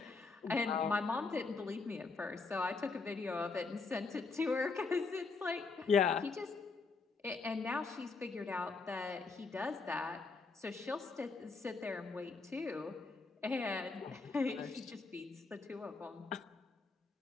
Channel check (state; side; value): quieter; right; 4.2 dB